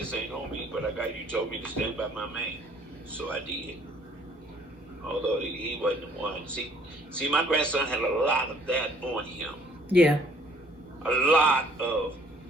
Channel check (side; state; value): both; normal; correlation 0.60